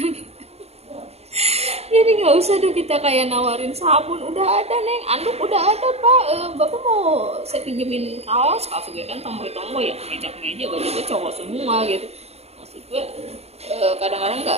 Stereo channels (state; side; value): late; left; 0.30 ms